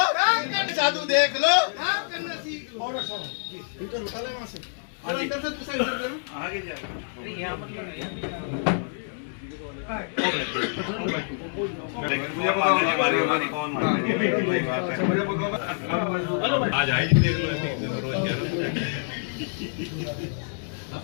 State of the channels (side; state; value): right; silent; digital silence